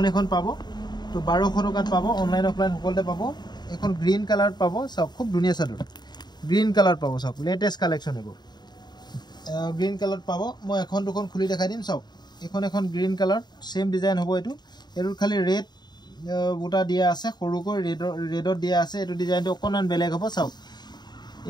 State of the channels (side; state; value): right; late; 0.21 ms